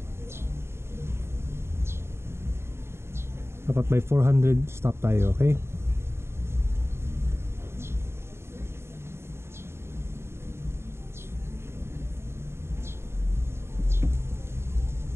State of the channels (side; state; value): left; late; 0.12 ms